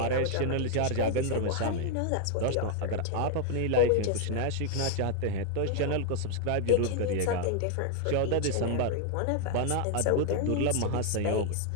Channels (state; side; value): different; both; correlation 0.00